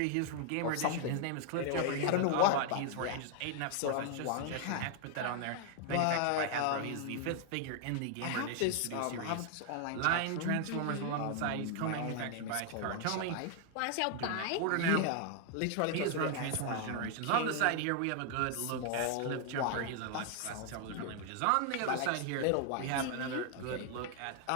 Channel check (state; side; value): different; both; correlation 0.00